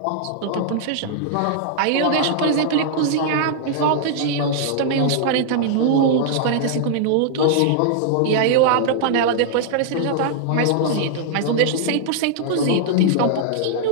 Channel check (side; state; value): both; different; correlation -0.01